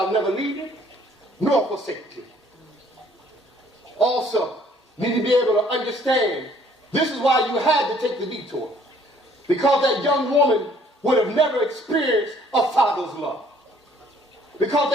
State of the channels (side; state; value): both; normal; correlation 0.60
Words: never leave you, nor forsake you. Also, you need to be able to understand, this is why you had to take the detour. Because that young woman would have never experienced a father's love. Because